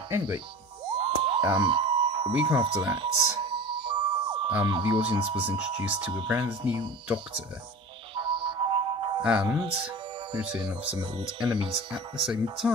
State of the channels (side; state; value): both; normal; correlation 0.36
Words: anyway, a week after that, the audience was introduced to a brand new Doctor, and the return of some old enemies at the same